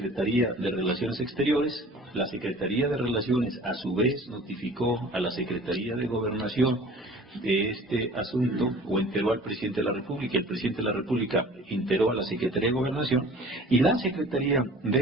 de Relaciones Exteriores, la Secretaría de Relaciones a su vez notificó a la Secretaría de Gobernación de este asunto, o enteró al Presidente de la República, el Presidente de la República enteró a la Secretaría de Gobernación, y la Secretaría de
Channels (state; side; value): normal; both; correlation 0.45